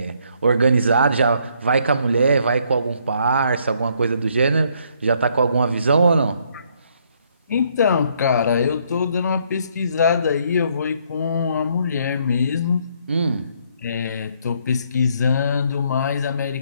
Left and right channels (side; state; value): both; inverted; correlation -0.69